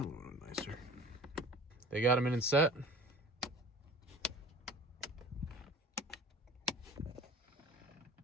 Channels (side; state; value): both; normal; correlation 0.43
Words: would look nicer. They got them in and set.